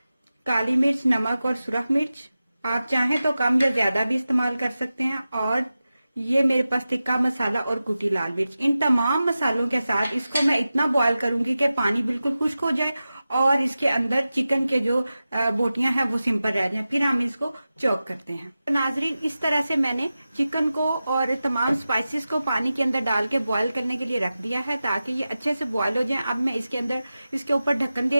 काली मिर्च, नमक और सुरख मिर्च आप चाहें तो कम या ज्यादा भी इस्तेमाल कर सकते हैं। और ये मेरे पास टिक्का मसाला और कुटी लाल मिर्च। इन तमाम मसालों के साथ इसको मैं इतना बॉयल करूंगी कि पानी बिल्कुल खुश्क हो जाए और इसके अंदर चिकन के जो बोटियां हैं वो सिंपल रह जाएं। फिर हम इसको चॉप करते हैं। तो नाजरीन, इस तरह से मैंने चिकन को और तमाम स्पाइसेस को पानी के अंदर डाल के बॉयल करने के लिए रख दिया है ताकि ये अच्छे से बॉयल हो जाए। अब मैं इसके अंदर इसके ऊपर ढक्कन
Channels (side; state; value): both; inverted; correlation -0.94